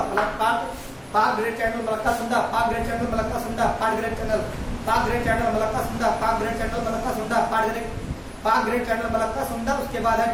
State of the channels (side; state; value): both; identical; correlation 1.00